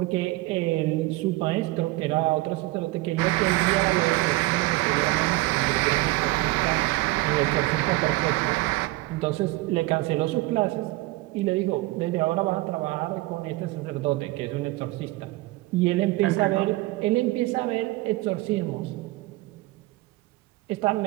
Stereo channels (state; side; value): quieter; left; 20.2 dB